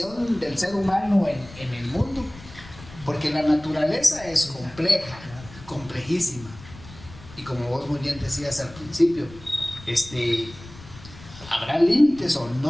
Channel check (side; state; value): left; noise; rumble, 18 dB below the sound